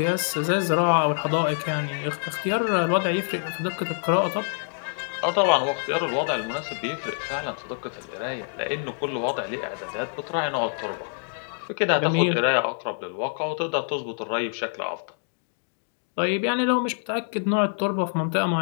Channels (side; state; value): right; silent; digital silence